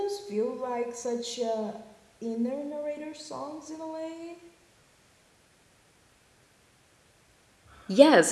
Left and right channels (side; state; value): both; identical; correlation 1.00